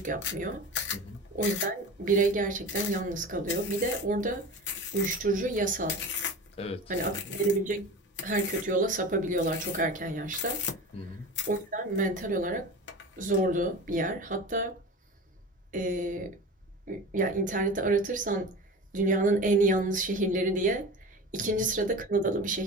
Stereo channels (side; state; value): both; normal; correlation 0.32